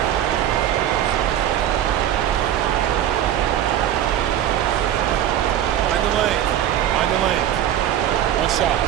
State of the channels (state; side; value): quieter; left; 11.1 dB